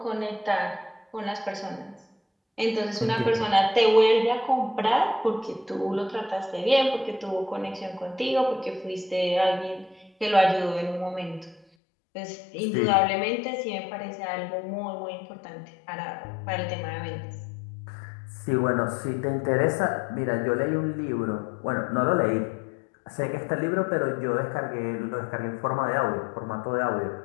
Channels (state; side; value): drops out; right; at 11.7 s